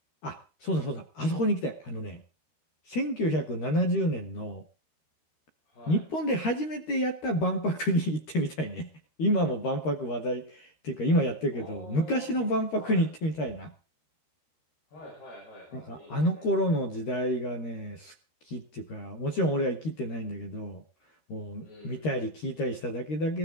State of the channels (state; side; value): late; right; 13 ms